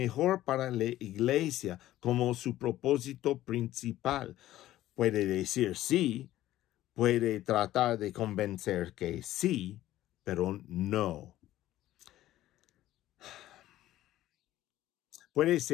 para la iglesia como su propósito principal. Puede decir sí, puede tratar de convencer que sí, pero no. Puede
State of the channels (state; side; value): quieter; right; 14.4 dB